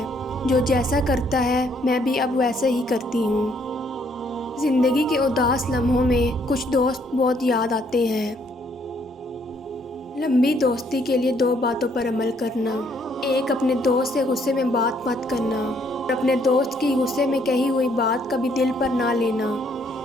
جو جیسا کرتا ہے میں بھی اب ویسے ہی کرتی ہوں۔ زندگی کے اداس لمحوں میں کچھ دوست بہت یاد آتے ہیں۔ لمبی دوستی کے لیے 2 باتوں پر عمل کرنا۔ ایک، اپنے دوست سے غصے میں بات مت کرنا، اور اپنے دوست کی غصے میں کہی ہوئی بات کبھی دل پر نہ لینا۔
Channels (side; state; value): both; normal; correlation 0.68